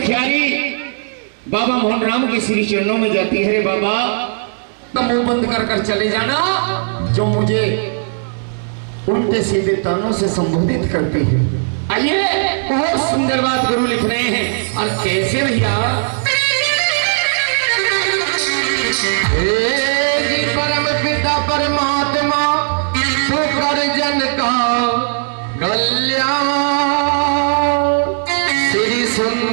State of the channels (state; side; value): silent; left; digital silence